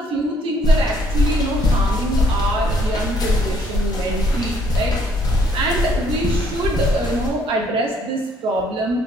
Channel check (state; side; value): normal; both; correlation 0.65